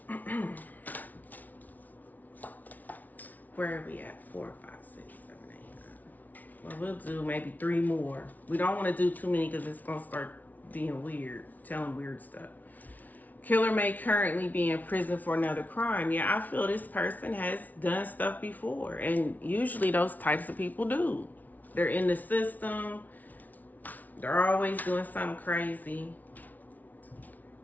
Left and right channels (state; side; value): late; right; 0.077 ms